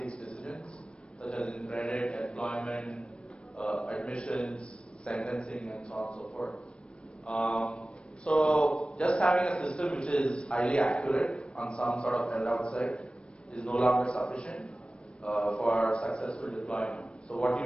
decisions, such as in credit, employment, admissions, sentencing, and so on and so forth. So just having a system which is highly accurate on some sort of held-out set is no longer sufficient for successful deployment.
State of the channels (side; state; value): right; late; 0.057 ms